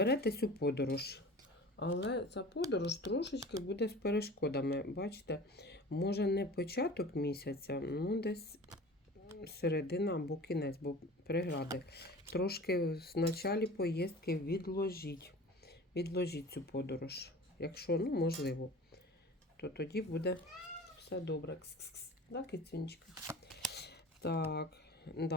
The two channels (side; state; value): both; normal; correlation 0.40